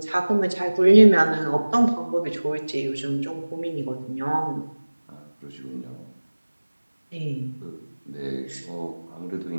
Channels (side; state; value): both; inverted; correlation -1.00